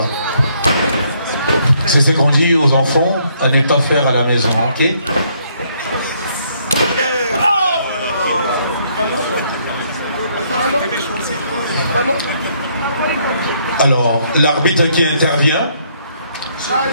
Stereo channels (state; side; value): inverted; both; correlation -0.69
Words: C'est ce qu'on dit aux enfants à ne pas faire à la maison, ok? Alors, l'arbitre qui intervient